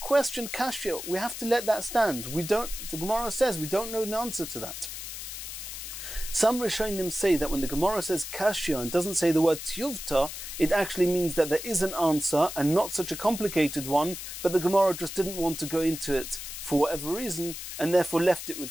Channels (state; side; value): noise; left; hiss, 8 dB below the sound